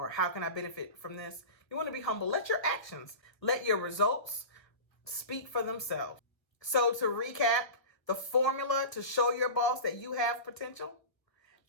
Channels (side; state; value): right; late; 1.2 ms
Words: how can I benefit from this. You want to be humble. Let your actions, let your results speak for themselves. So to recap, the formula to show your boss that you have potential.